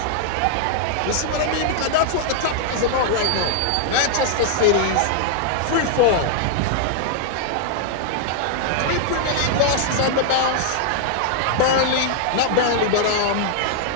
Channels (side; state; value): both; different; correlation -0.01